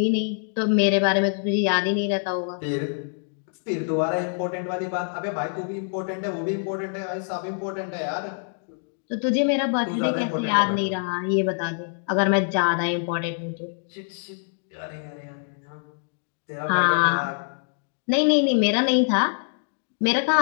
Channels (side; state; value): right; silent; 62 dB below the other